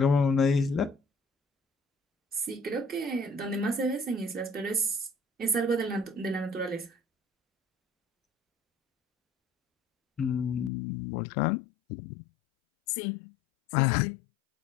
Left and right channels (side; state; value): right; drops out; at 10.7 s